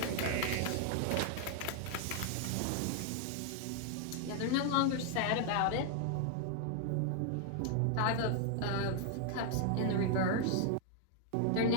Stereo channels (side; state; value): both; different; correlation 0.00